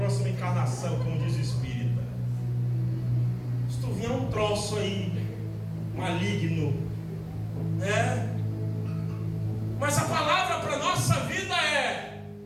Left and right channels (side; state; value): both; identical; correlation 1.00